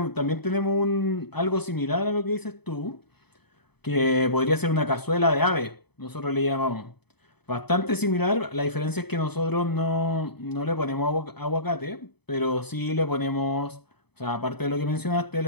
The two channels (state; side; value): late; right; 0.98 ms